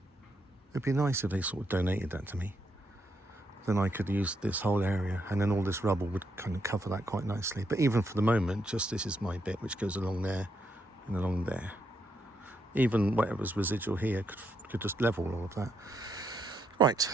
it'd be nice if they sort of donated that to me. Then I could use this whole area, and then all this rubble would kind of cover that quite nicely. But even for the moment, just this is my bit, which goes along there and along there. Even whatever's residual here could just level all of that. Right,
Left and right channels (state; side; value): normal; both; correlation 0.78